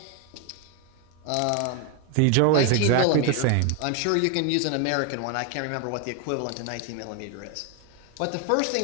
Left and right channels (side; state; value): both; different; correlation 0.01